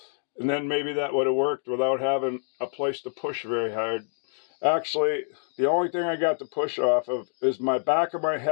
And then maybe that would have worked without having a place to push very hard. Actually, the only thing I got to push off of is my back of my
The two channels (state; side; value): silent; right; digital silence